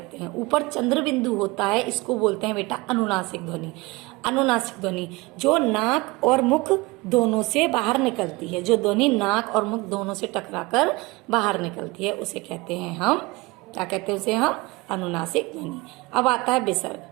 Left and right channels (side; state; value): left; quieter; 23.0 dB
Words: हैं। ऊपर चंद्र बिंदु होता है, इसको बोलते हैं बेटा अनुनासिक ध्वनि। अनुनासिक ध्वनि जो नाक और मुख दोनों से बाहर निकलती है, जो ध्वनि नाक और मुख दोनों से टकराकर बाहर निकलती है, उसे कहते हैं हम, क्या कहते हैं उसे हम, अनुनासिक ध्वनि। अब आता है विसर्ग।